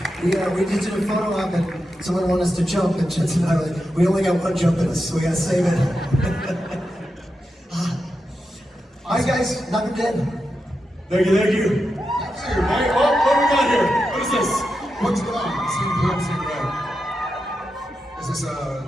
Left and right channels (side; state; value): both; normal; correlation 0.88